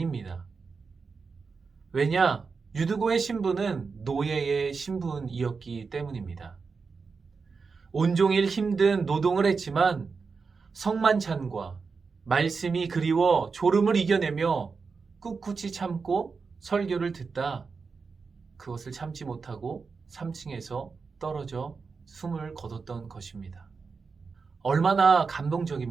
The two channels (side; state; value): left; quieter; 4.9 dB